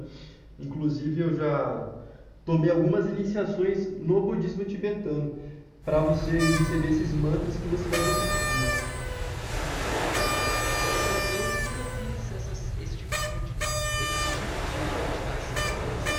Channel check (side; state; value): both; identical; correlation 1.00